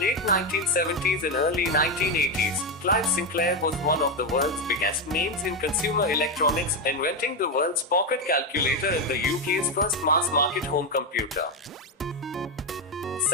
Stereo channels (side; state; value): both; normal; correlation 0.07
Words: 1970s and early 1980s, Clive Sinclair was one of the world's biggest names in consumer electronics, inventing the world's pocket calculator and the UK's first mass-market home computer.